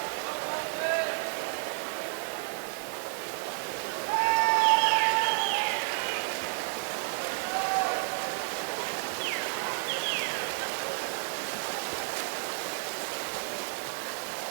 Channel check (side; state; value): left; silent; digital silence